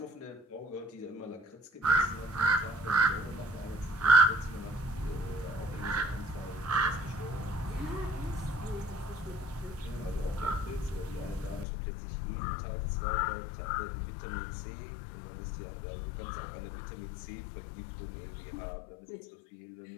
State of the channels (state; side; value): drops out; right; at 11.7 s